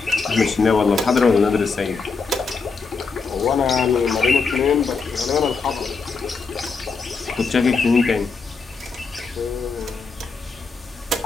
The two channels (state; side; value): quieter; right; 4.7 dB